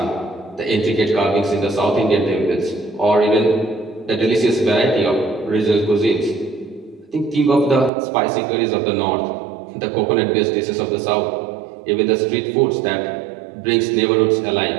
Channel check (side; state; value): left; drops out; at 7.9 s